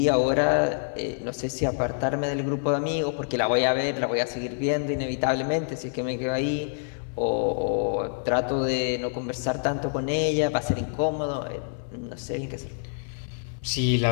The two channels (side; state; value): right; silent; digital silence